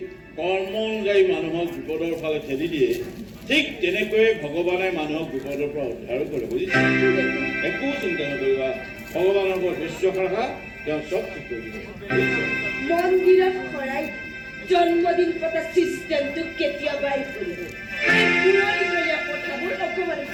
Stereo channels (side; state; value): both; identical; correlation 1.00